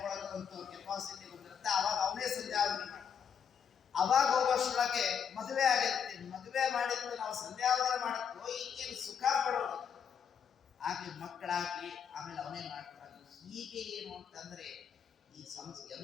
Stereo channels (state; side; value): quieter; right; 7.5 dB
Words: ಕೆಪಾಸಿಟಿ ಬಂದಿರುತ್ತೆ, ಅವಾಗ ಅವನೇ ಸಂಧ್ಯಾವಂದನೆ ಮಾಡಿ. ಅವಾಗ ಹೋಗೋಷ್ಟೊಳಗೆ ಮದುವೆ ಆಗಿರುತ್ತೆ, ಮದುವೆ ಮಾಡಿದ್ದು ನಾವು ಸಂಧ್ಯಾವಂದನೆ ಮಾಡಕ್ಕೋ ಈಗೇನು ಸುಖ ಪಡೋದು, ಆಗ್ಲಿ ಮಕ್ಕಳಾಗ್ಲಿ ಆಮೇಲೆ ಅವನೇ ಮಾಡ್ತಾರೆ. ಹೀಗೆ ಏನು ಅಂತಂದ್ರೆ ಈ